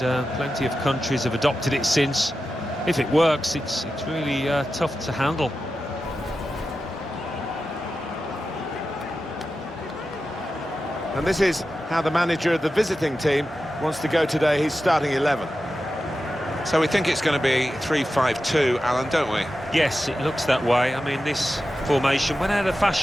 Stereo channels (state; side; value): normal; both; correlation 0.92